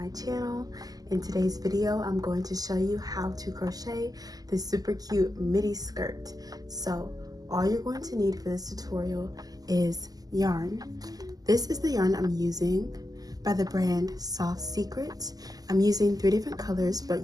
channel. In today's video I'm going to show you how to crochet this super cute midi skirt. So all you're going to need for this tutorial is yarn. This is the yarn I'm using by the brand Soft Secret. I'm using 3 different colors, but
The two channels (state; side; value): late; left; 0.18 ms